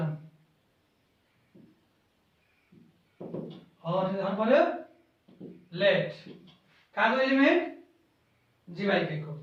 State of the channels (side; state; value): both; identical; correlation 1.00